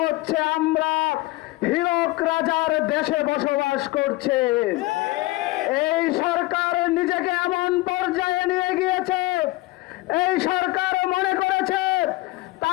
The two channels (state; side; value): quieter; right; 20.1 dB